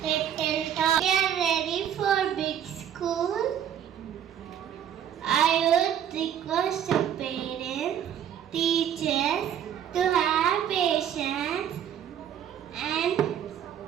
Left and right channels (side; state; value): left; quieter; 9.5 dB